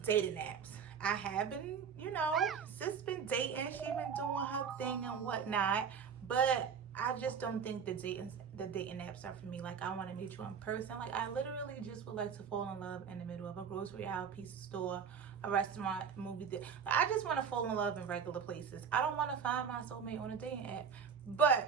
dating apps. I have been, sis been dating. She been doing her thing and whatnot, but I just don't think the dating apps are for me. Like, I want to meet you in person. Like, I literally just would like to fall in love in the middle of a grocery aisle, pizza store, a restaurant, movie theater. I just want to fall in love in regular places. I don't want to find my soulmate on a dating app.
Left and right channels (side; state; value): left; quieter; 6.8 dB